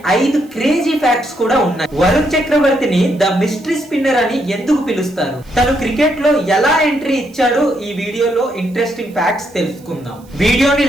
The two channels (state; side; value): noise; right; hiss, 29 dB below the sound